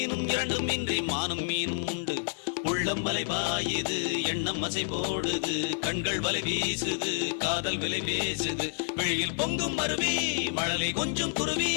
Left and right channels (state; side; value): silent; right; digital silence